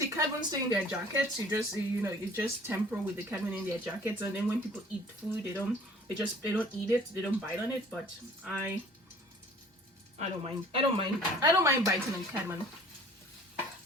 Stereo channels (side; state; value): both; normal; correlation 0.51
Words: cardamom stay in their jackets. You just temper with the cardamom in their jackets, and then when people eat food, they don't eat it. They don't bite on it. But I don't mind. I don't mind biting on cardamom.